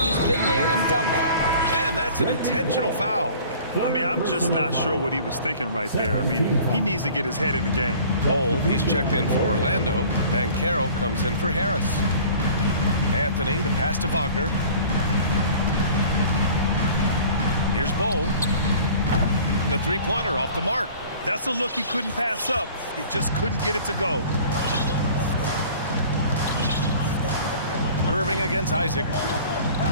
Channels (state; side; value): inverted; both; correlation -0.47